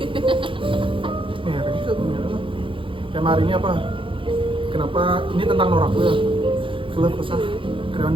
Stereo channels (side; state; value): left; late; 0.25 ms